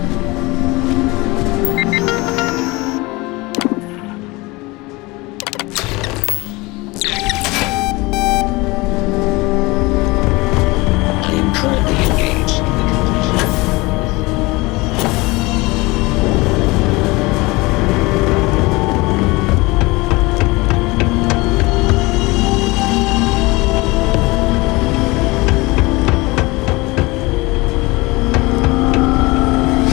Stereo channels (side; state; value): right; quieter; 23.2 dB